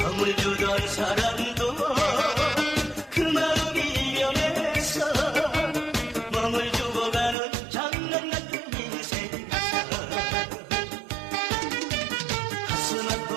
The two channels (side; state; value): left; drops out; at 7.4 s